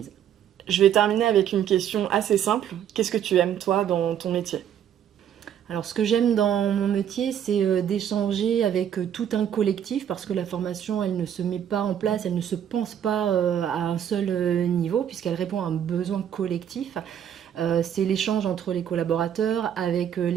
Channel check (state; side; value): quieter; left; 9.5 dB